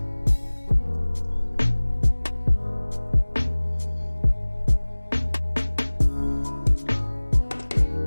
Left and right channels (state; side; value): inverted; both; correlation -1.00